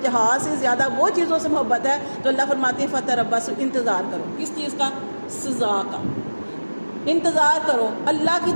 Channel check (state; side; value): inverted; both; correlation -1.00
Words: جہاد سے زیادہ وہ چیزوں سے محبت ہے تو اللہ فرماتے ہیں فتربصوا، انتظار کرو. کس چیز کا؟ سزا کا انتظار کرو، اللہ کی